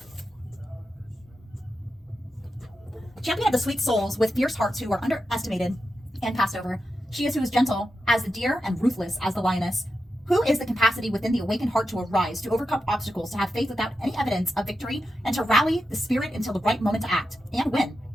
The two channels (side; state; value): both; normal; correlation 0.89